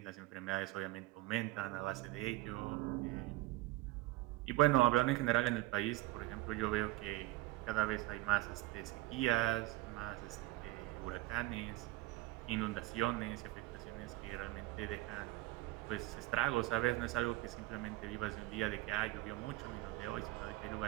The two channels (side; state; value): left; quieter; 18.6 dB